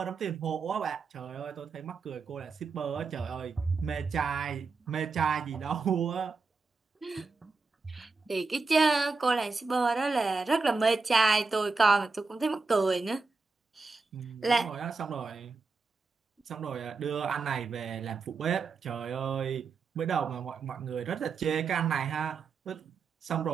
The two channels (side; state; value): left; quieter; 4.4 dB